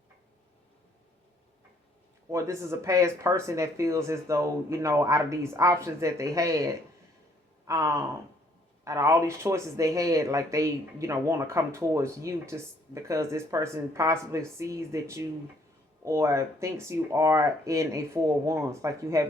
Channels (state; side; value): normal; both; correlation 0.65